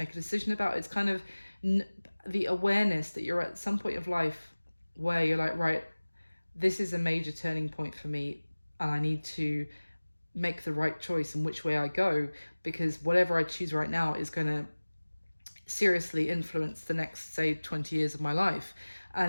a decision about. It's kind of the awareness that you're at some point of life where you're like, right, this is a major turning point for me, and I need to make the right choice in which way I go, because whatever I choose right now is going to seriously influence the next, say, 20 years of my life.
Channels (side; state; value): both; inverted; correlation -1.00